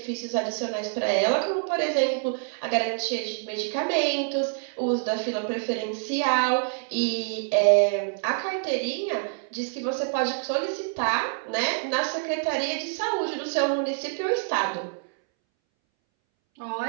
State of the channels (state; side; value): silent; left; 61 dB below the other